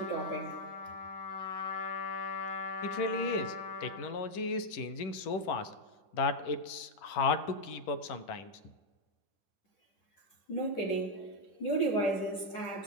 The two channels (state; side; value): late; right; 11 ms